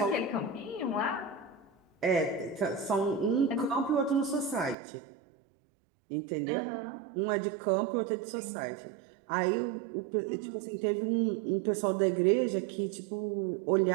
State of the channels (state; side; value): drops out; left; at 4.8 s